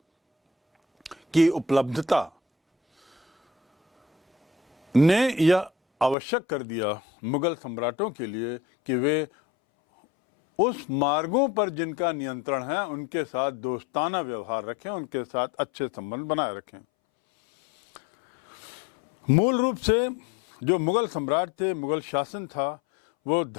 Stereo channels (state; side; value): drops out; right; at 6.2 s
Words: की उपलब्धता ने यह आवश्यक कर दिया मुगल सम्राटों के लिए कि वे उस मार्गों पर जिनका नियंत्रण है उनके साथ दोस्ताना व्यवहार रखें, उनके साथ अच्छे संबंध बनाए रखें। मूल रूप से जो मुगल सम्राट थे, मुगल शासन था, वो